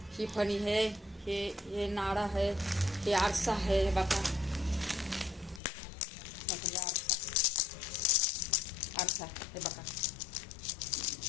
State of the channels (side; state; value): right; drops out; at 5.6 s